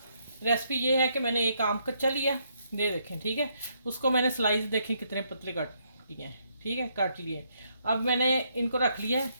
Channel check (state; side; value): inverted; both; correlation -0.74